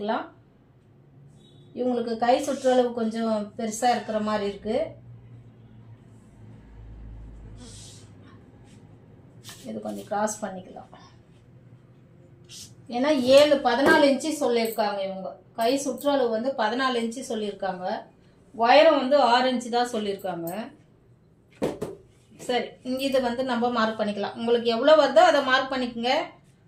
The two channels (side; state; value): both; identical; correlation 1.00